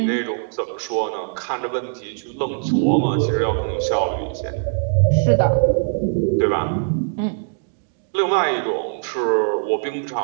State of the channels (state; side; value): silent; left; digital silence